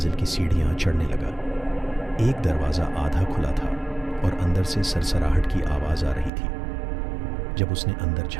की सीढ़ियां चढ़ने लगा। एक दरवाज़ा आधा खुला था और अंदर से सरसराहट की आवाज़ आ रही थी। जब उसने अंदर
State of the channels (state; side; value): drops out; left; at 6.3 s